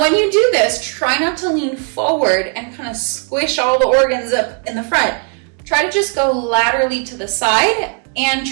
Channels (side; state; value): left; quieter; 39.3 dB